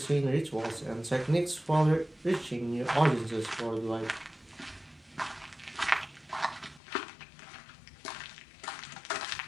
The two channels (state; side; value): drops out; right; at 6.8 s